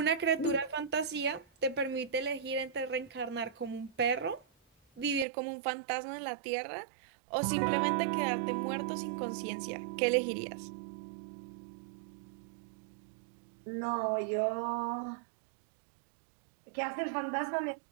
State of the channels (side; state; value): left; drops out; at 5.2 s